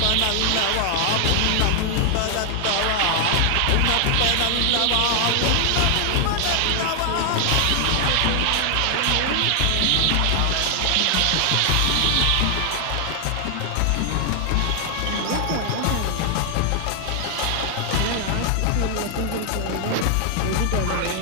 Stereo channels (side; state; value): both; different; correlation 0.00